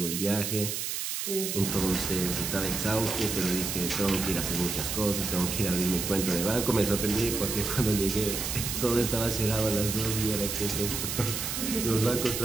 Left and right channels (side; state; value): right; noise; hiss, 3 dB below the sound